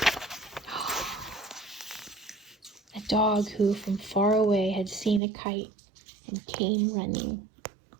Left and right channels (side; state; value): left; drops out; at 5.2 s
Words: A dog who from far away had seen a kite and came running.